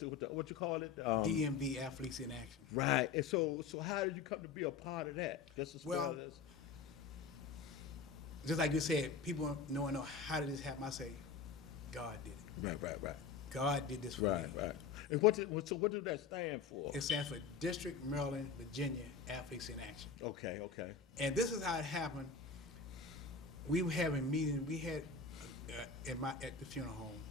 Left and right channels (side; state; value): right; quieter; 5.4 dB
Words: you call it? DMV Athletes in Action. Right. And so how did you come to be a part of that? Just like you said, people know how did this happen. I say, God did it. Right. God did this for me. Right. And what did that stand for? It stands for District, Maryland, Virginia Athletes in Action. Okay. And this is how it happened. We were having meetings. We had at the funeral home.